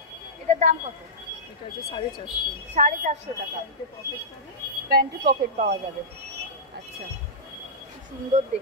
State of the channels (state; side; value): normal; both; correlation -0.13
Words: এটার দাম কত? এটা হচ্ছে 450। 450 টাকা। প্যান্টে পকেট পাওয়া যাবে, আচ্ছা, সুন্দর